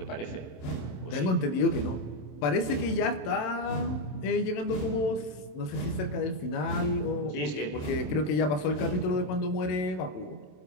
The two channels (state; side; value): late; right; 26 ms